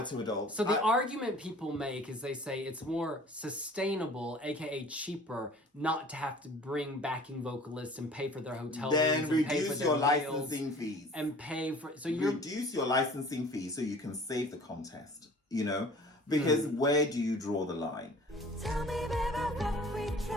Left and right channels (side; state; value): both; normal; correlation 0.48